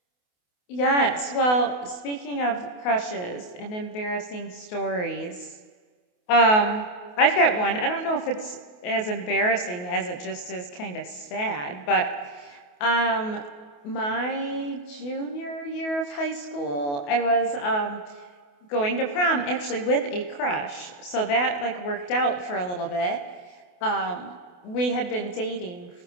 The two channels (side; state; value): right; late; 28 ms